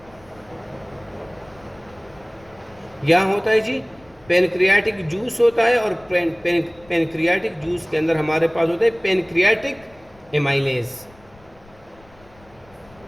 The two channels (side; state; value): left; noise; rumble, 27 dB below the sound